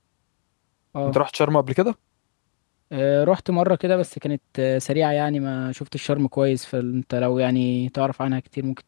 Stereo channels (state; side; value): silent; right; digital silence